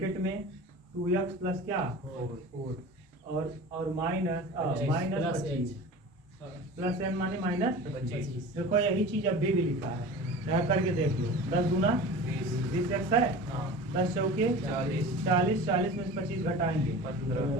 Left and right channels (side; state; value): both; normal; correlation 0.36